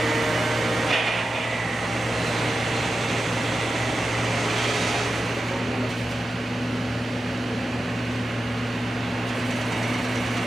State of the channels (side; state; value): both; normal; correlation 0.92